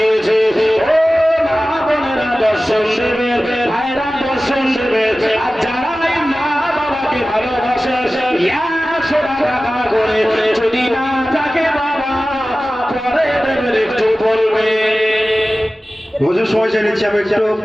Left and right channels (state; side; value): normal; both; correlation 0.96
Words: ও মা বোনেরা দর্শন দেবে, ভাইরা দর্শন দেবে। আর যারা এই মা বাবাকে ভালোবাসে 100 টাকা করে যদি না থাকে বাবা পরে দেবেন, একটু বলবে। হুজুর সময় চেয়ে নিচ্ছি আমি একটু।